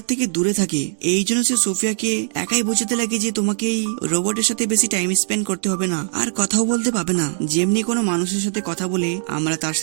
থেকে দূরে থাকে। এই জন্য সে সোফিয়াকে একাই বোঝাতে লাগে যে তোমাকে এই রোবটের সাথে বেশি টাইম স্পেন্ড করতে হবে না, আর কথাও বলতে পাবে না। যেমনি কোনো মানুষের সাথে কথা বলে আমরা তার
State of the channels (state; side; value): silent; left; 62 dB below the other